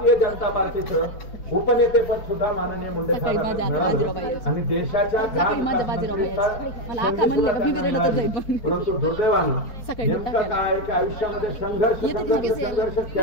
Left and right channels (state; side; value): late; right; 4.4 ms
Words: जनता पार्टीचं उपनेतेपद सुद्धा माननीय मुंडे आणि देशाच्या परंतु दुर्दैवानं नेमका काय की आयुष्यामध्ये संघर्ष